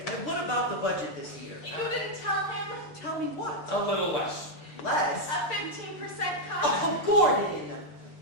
And what about the budget this year? You didn't tell him? Tell me what? A little less. Less? A 15% cut? Oh, Gordon!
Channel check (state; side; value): late; right; 6.7 ms